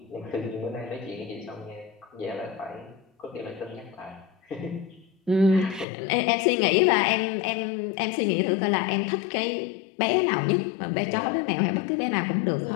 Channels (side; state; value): right; drops out; at 5.9 s